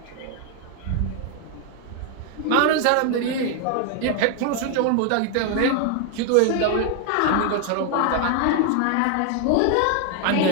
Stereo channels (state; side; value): different; both; correlation 0.01